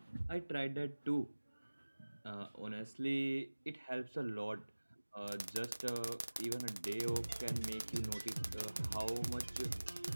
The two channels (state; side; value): inverted; both; correlation -1.00